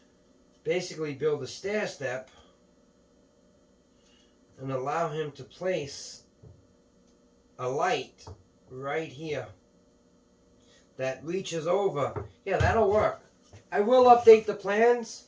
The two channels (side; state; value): both; identical; correlation 1.00